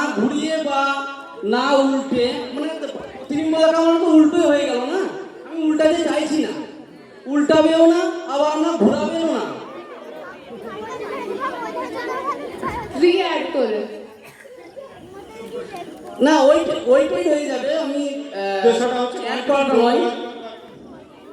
ঘুরিয়ে বা না উল্টে মানে তিনি বলা কারণ তো উল্টোই হয়ে গেল না আমি উল্টাতে চাইছি না উল্টাবেও না আবার আমরা ঘোরাবেও না রি-অ্যাড করে না ওইটাই হয়ে যাবে আমি দেশটা হচ্ছে অ্যাড করাটা নয়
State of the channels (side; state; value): both; identical; correlation 1.00